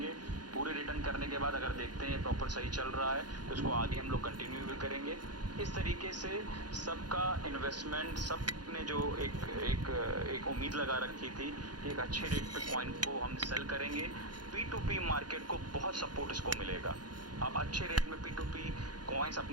पूरे रिटर्न करने के बाद अगर देखते हैं प्रॉपर सही चल रहा है तो इसको आगे हम लोग कंटिन्यू भी करेंगे। इस तरीके से सबका इन्वेस्टमेंट, सबने जो एक उम्मीद लगा रखी थी कि एक अच्छे रेट पे कॉइन को हम सेल करेंगे, P2P मार्केट को बहुत सपोर्ट इसको मिलेगा। आप अच्छे रेट में P2P कॉइन्स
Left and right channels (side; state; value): left; late; 0.70 ms